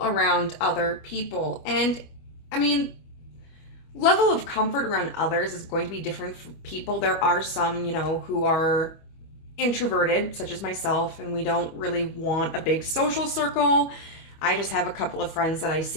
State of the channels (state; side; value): late; right; 25 ms